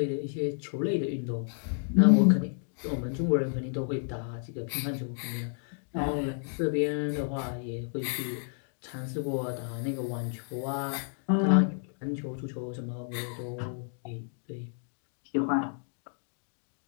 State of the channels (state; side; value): silent; right; 57 dB below the other